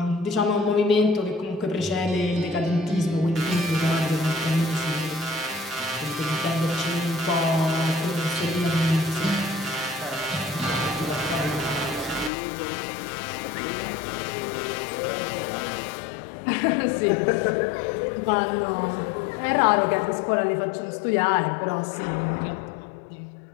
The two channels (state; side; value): drops out; right; at 12.3 s